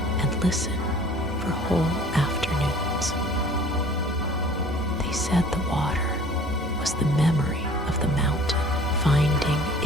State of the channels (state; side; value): normal; both; correlation 0.49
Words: and listen for whole afternoons. They said the water was the memory of the mountain finding